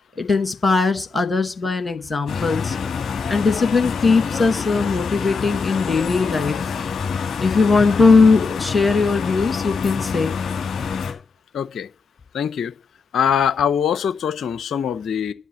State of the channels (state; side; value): quieter; right; 4.5 dB